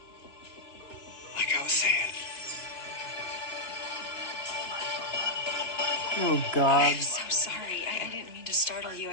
Like I was saying. Oh, God. I'm so sorry. I didn't mean to startle you.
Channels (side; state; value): right; late; 2.9 ms